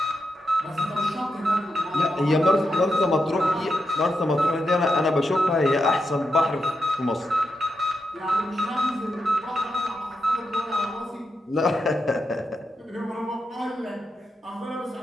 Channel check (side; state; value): both; normal; correlation 0.85